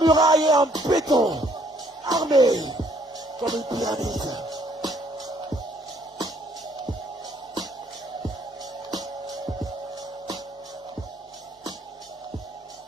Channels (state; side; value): normal; both; correlation 0.65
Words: est en béton, armée comme une pyramide.